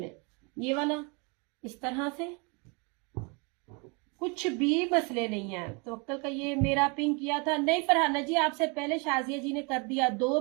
ये वाला इस तरह से, कुछ भी मसले नहीं है। तो अक्कल का ये मेरा पिंक किया था नहीं फरहाना जी, आपसे पहले शाजिया जी ने कर दिया। 2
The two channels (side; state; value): left; quieter; 32.0 dB